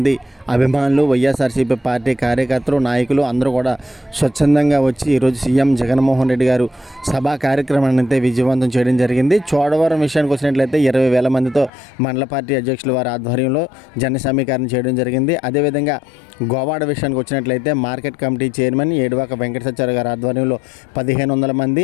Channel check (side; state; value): right; drops out; at 11.7 s